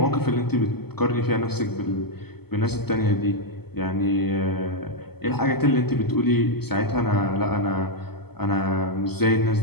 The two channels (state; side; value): late; right; 0.96 ms